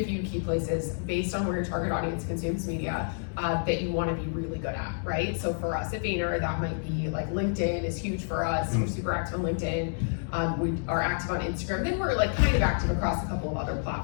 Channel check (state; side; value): silent; right; digital silence